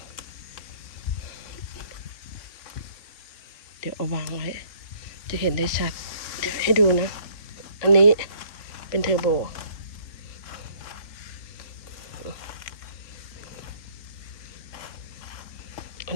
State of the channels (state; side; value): late; right; 3.3 ms